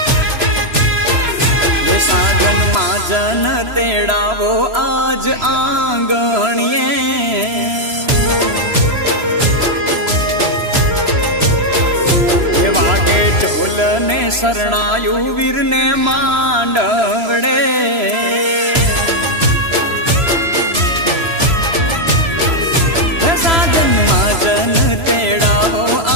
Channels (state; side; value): late; left; 3.0 ms